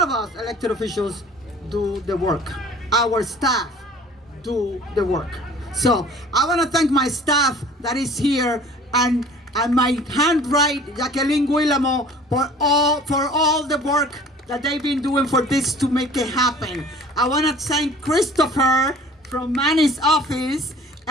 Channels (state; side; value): normal; both; correlation 0.48